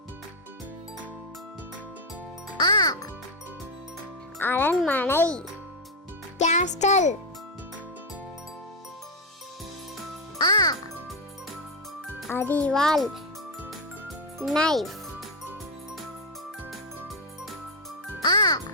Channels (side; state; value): both; normal; correlation 0.05